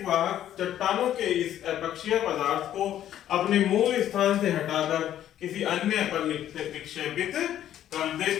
वाहक चट्टानों के इस अपक्षय पदार्थ को अपने मूल स्थान से हटाकर किसी अन्य पर निक्षेपित कर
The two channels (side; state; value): right; quieter; 11.5 dB